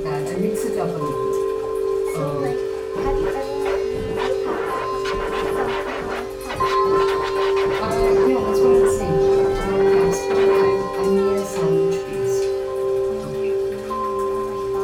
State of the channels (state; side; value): identical; both; correlation 1.00